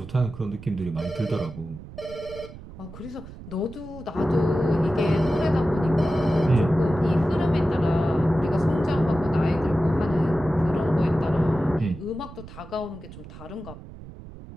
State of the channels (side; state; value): right; noise; rumble, 15 dB below the sound